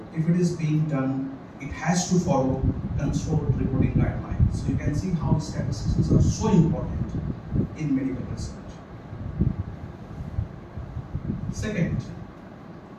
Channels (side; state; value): both; identical; correlation 1.00